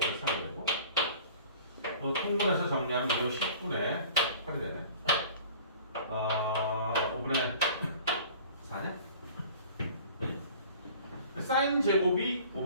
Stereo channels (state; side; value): inverted; both; correlation -0.46